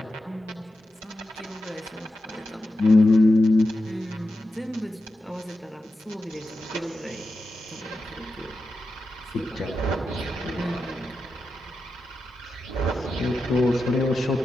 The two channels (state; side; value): normal; both; correlation 0.90